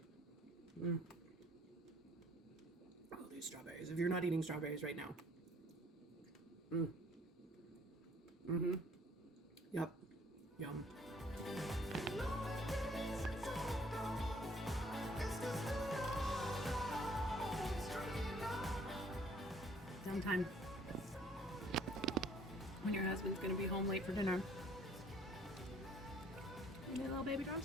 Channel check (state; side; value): normal; both; correlation 0.59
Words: Oh, these strawberries. If you're not eating strawberries right now. Yep. Yum. Sometime when your husband's gonna be home late for dinner, you need a little baby